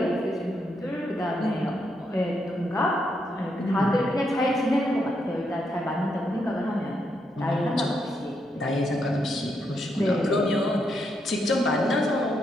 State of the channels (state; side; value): normal; both; correlation 0.79